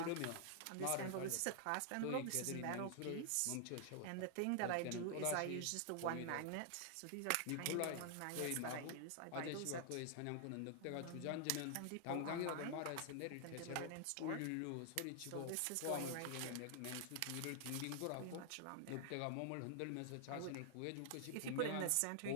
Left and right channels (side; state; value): both; different; correlation 0.00